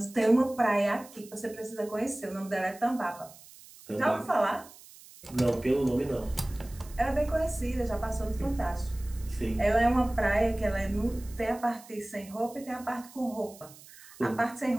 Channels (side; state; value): right; noise; hiss, 21 dB below the sound